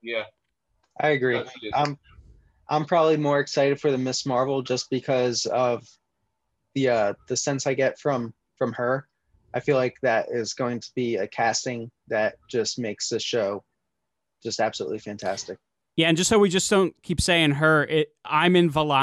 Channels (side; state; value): both; identical; correlation 1.00